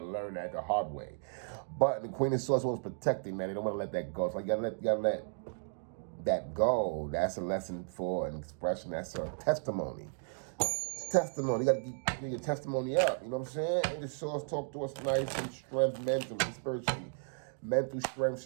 learn that the hard way. But the Queen of Swords was protecting, man. They don't want to let that go. So you gotta let that go. That's a lesson for an expression. That's a testimony. Testimony. You got to get your testimony up. You know what I'm saying? And the Swords talk to us nice and strength mentally, spiritually. Mental strength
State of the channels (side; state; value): left; silent; digital silence